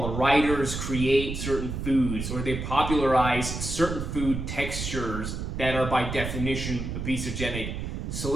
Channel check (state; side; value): noise; right; rumble, 5 dB below the sound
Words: writers create certain foods, or they popularize certain food textures that are by definition obesogenic.